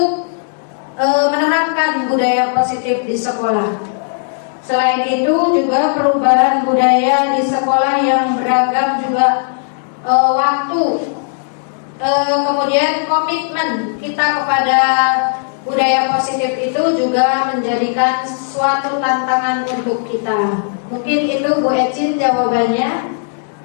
menerapkan budaya positif di sekolah. Selain itu juga perubahan budaya di sekolah yang beragam juga waktu, kemudian komitmen kita kepada budaya positif itu juga menjadikan suatu tantangan untuk kita. Mungkin itu Bu Ecin jawabannya.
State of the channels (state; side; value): silent; right; digital silence